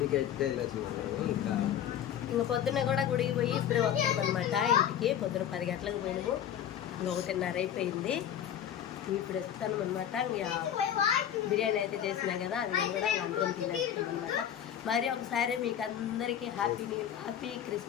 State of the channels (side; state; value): right; quieter; 9.9 dB